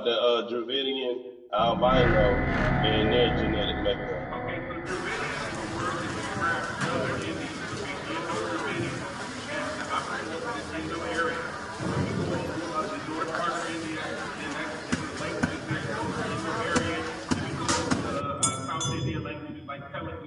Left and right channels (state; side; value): identical; both; correlation 1.00